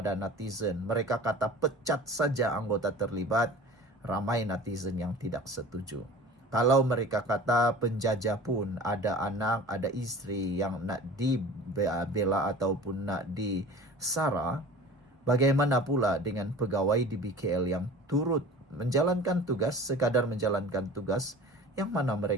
netizen, mereka kata pecat saja anggota terlibat, ramai netizen yang tidak setuju. Kalau mereka kata penjajah pun ada anak, ada istri yang nak dibela ataupun nak disara, bagaimana pula dengan pegawai di BKL yang turut menjalankan tugas, sekadar menjalankan tugas, yang mana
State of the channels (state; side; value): normal; both; correlation 0.40